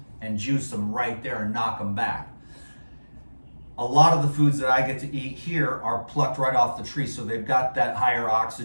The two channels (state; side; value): inverted; both; correlation -1.00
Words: and juice them right there and knock them back. A lot of the foods that I get to eat here are plucked right off the tree, so they've got that higher